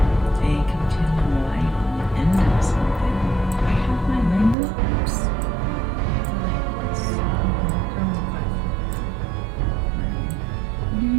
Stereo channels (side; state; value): left; drops out; at 4.5 s